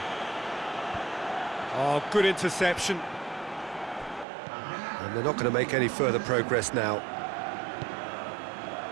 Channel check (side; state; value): left; drops out; at 4.2 s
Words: Oh, good interception. And they're not going to make any further progress now.